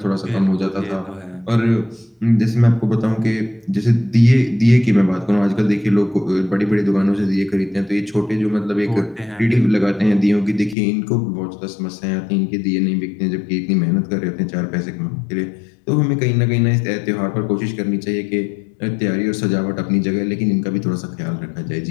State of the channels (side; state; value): right; drops out; at 10.8 s